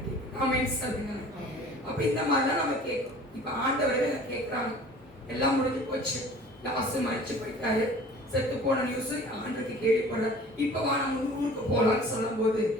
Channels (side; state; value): both; normal; correlation 0.46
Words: அமைச்சு சொல்லுங்க. அப்ப இந்த மாதிரிலாம் நம்ம கேட்கும். இப்ப ஆண்டவரே கேட்கிறாங்க, எல்லாம் முடிஞ்சு போச்சு, லாஸ்ட் மறைச்சு போயிட்டாரு, செத்து போன நியூஸ் ஆண்டுக்கு கேள்விப்படுற, இப்ப வா நம்ம ஊருக்கு போலான்னு சொல்லும் போது,